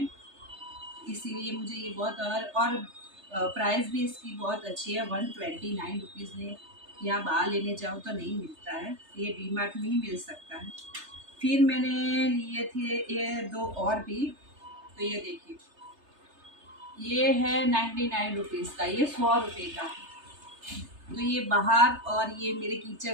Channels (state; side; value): late; left; 3.3 ms